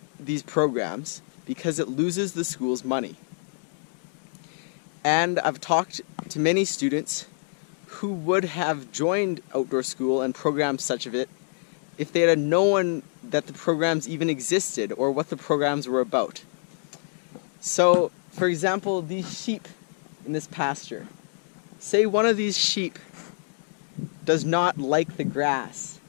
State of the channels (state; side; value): silent; right; digital silence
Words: these programs because it loses the school's money. And I've talked to many students who would have joined outdoor school and programs such of it if they had known that the programs even existed or what the programs were about. So, for example, these sheep in this pasture. Say one of these sheep does not like the grass